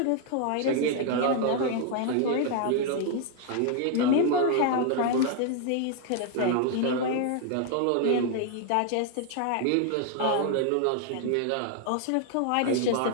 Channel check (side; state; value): both; different; correlation 0.00